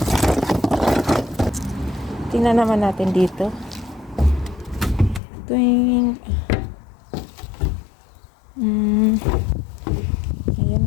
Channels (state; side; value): drops out; right; at 5.2 s